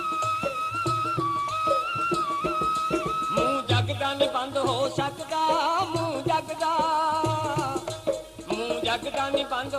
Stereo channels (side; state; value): both; identical; correlation 1.00